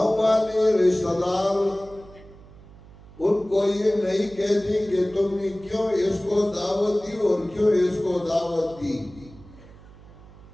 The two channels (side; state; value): right; noise; hum, 21 dB below the sound